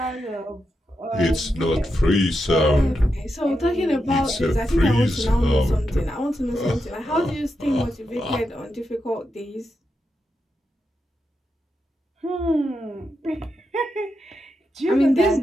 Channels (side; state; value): both; normal; correlation 0.86